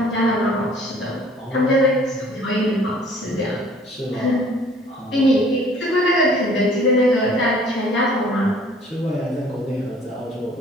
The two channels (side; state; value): both; normal; correlation 0.54